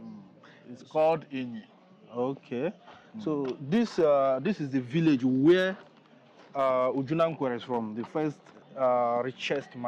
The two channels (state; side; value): identical; both; correlation 1.00